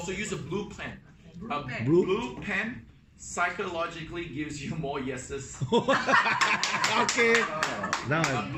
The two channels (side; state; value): both; identical; correlation 1.00